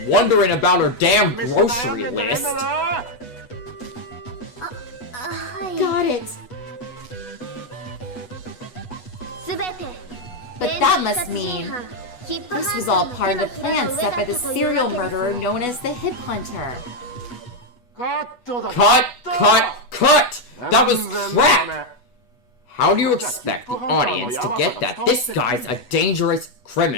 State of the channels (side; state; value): right; late; 8.2 ms